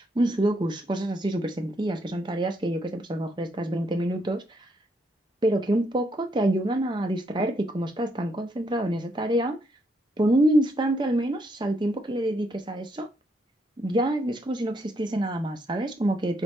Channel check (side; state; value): both; normal; correlation 0.75